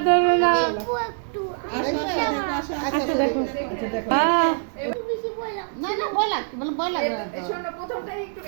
ধরো না একটু আচ্ছা দেখো আচ্ছা দেখো একটু বেশি বললাম না না ভয় লাগছে, বলে ভয় লাগে না তো। এই শোনো, প্রথমটাই একটু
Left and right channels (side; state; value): left; silent; 60 dB below the other